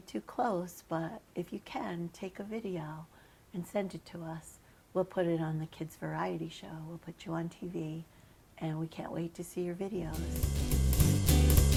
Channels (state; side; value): identical; both; correlation 1.00